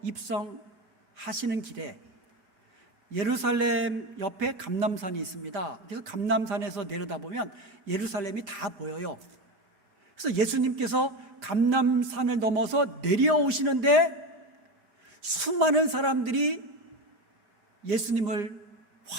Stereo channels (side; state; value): left; late; 4.3 ms